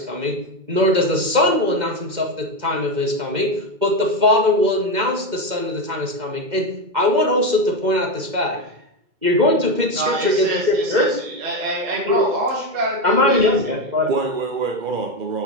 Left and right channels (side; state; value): left; late; 2.1 ms